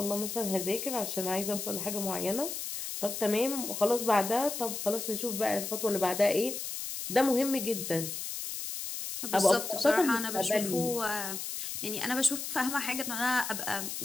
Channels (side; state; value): left; noise; hiss, 5 dB below the sound